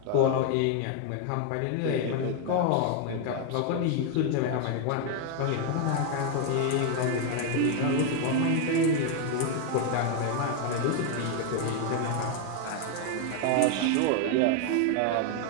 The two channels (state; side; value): different; both; correlation 0.01